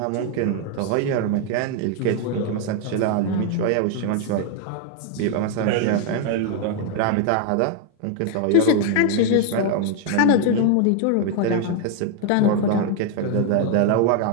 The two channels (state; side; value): different; both; correlation 0.00